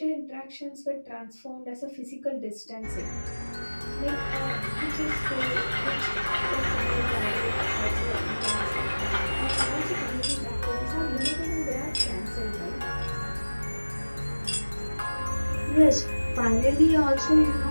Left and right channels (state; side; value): inverted; both; correlation -1.00